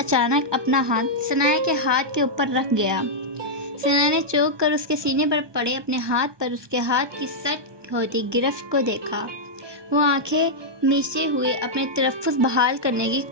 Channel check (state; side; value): late; left; 1.2 ms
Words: अपना हाथ सनाया के हाथ के ऊपर रख गया। सनाया ने चौंक कर उसके सीने पर पड़े अपने हाथ पर उसके हाथ की सट होती गिरफ्त को देखा। वो आंखें मीचे हुए अपने तलफ़्फ़ुज़ बहाल करने की